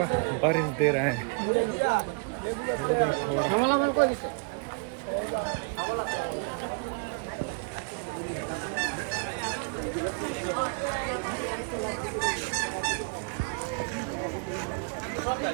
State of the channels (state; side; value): quieter; left; 39.0 dB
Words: बारिश दे रहा है, थोड़ा थोड़ा।